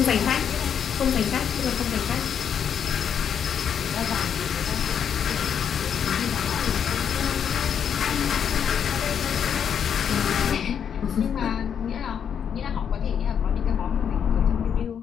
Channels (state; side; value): quieter; right; 8.0 dB